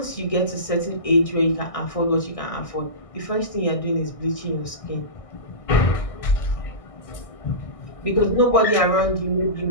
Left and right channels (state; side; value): late; right; 1.6 ms